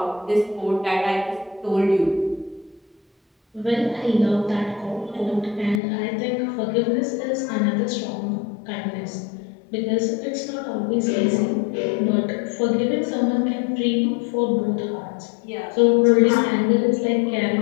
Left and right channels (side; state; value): right; drops out; at 5.8 s